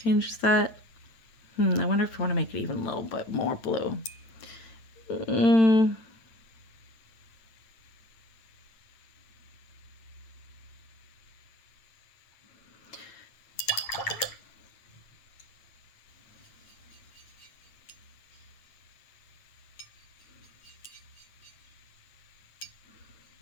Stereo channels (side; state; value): right; late; 8.9 ms